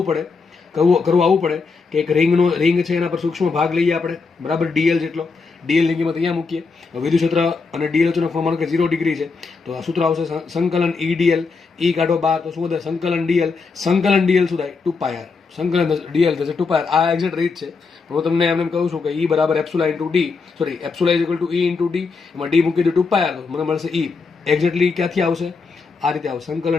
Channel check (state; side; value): quieter; right; 4.6 dB